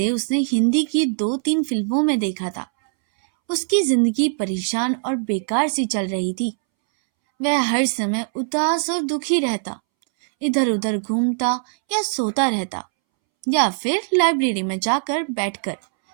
उसने हिंदी की 2-3 फिल्मों में देखा था। उसकी जिंदगी परेशान और बेकार सी चल रही थी। वह हर समय उदास और दुखी रहता, इधर उधर घूमता या सोता रहता या फिर लाइब्रेरी में जाकर बैठकर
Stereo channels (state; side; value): silent; left; 65 dB below the other